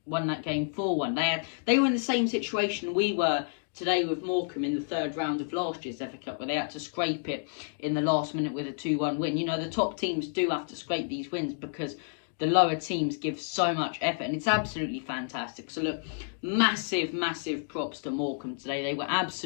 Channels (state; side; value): silent; right; digital silence